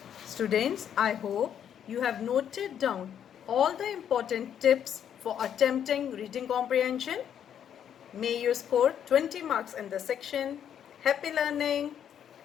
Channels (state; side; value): quieter; right; 9.2 dB